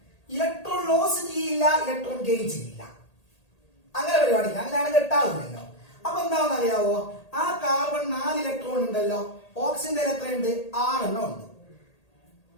ഇലക്ട്രോൺ ലോസ് ചെയ്യില്ല, ഇലക്ട്രോൺ ഗെയിൻ ചെയ്യില്ല. അങ്ങനെ പരിപാടിയില്ല, അങ്ങനെയാണ് കെട്ടാവില്ലല്ലോ. അപ്പൊ എന്താണെന്ന് അറിയാവോ? ആ കാർബൺ 4 ഇലക്ട്രോൺ ഉണ്ടല്ലോ, ഓക്സിജന്റെ എത്രയുണ്ട്? 6 എണ്ണം ഉണ്ട്.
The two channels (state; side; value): late; right; 1.8 ms